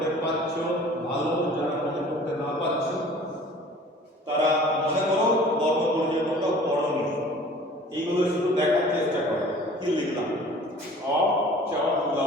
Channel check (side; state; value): both; normal; correlation 0.47